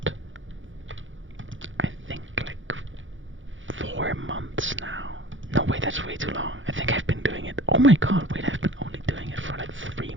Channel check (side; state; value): left; late; 0.56 ms